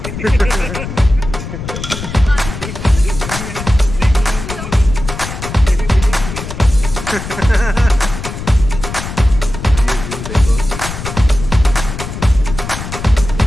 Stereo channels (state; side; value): noise; left; rumble, 8 dB below the sound